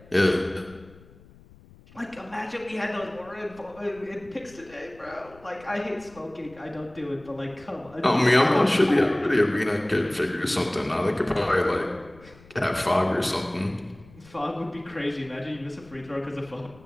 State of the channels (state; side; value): noise; left; rumble, 24 dB below the sound